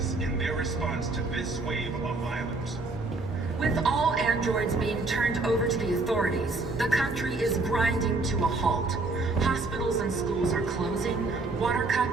in their response to this wave of violence. With all androids being turned over to the authorities, the country is grinding to a halt. Hospitals and schools are closing, water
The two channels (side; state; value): left; quieter; 3.3 dB